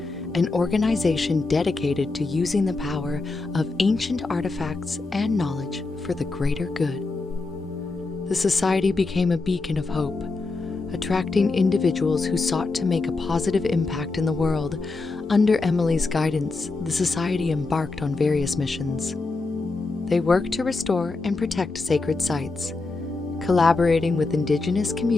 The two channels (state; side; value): quieter; right; 3.6 dB